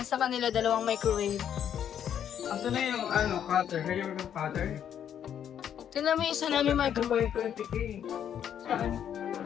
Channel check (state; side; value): quieter; right; 9.3 dB